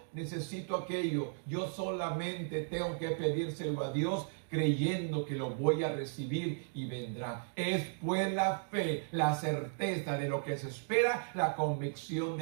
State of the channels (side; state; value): left; silent; digital silence